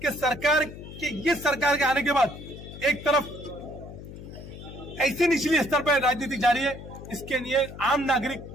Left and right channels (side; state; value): left; noise; hum, 13 dB below the sound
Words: सरकार के आने के बाद एक तरफ ऐसी निचली स्तर पर राजनीति जारी है, इसके लिए आम नागरिक